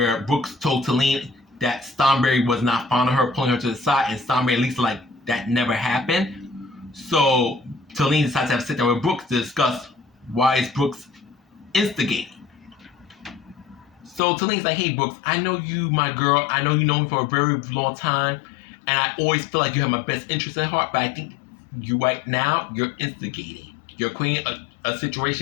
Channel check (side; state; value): right; drops out; at 14.2 s